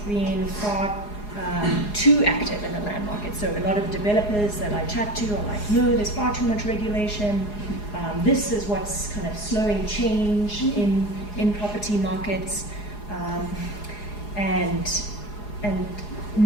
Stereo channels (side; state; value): right; late; 4.8 ms